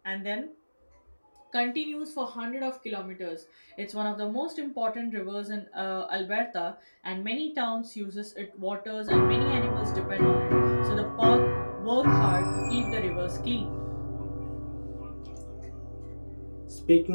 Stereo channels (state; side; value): inverted; both; correlation -1.00